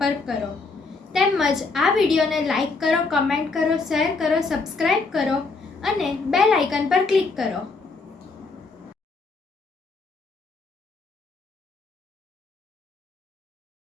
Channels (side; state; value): right; quieter; 4.0 dB